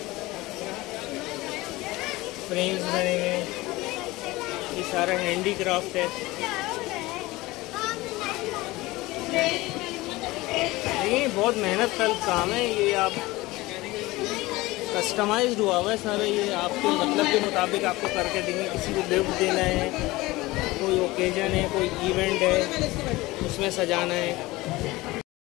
फ्रेम्स बने हुए, ये सारा हैंडीक्राफ्ट है। देखिए बहुत मेहनत का काम है ये, आप कस्टमाइज्ड हुआ हुआ है सारा, ये आपके मतलब के मुताबिक आपको करके देंगे। किसी को गिफ्ट देना है, कोई ओकेजन है, कोई इवेंट है, उसमें सजाना है।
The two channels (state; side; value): quieter; right; 20.1 dB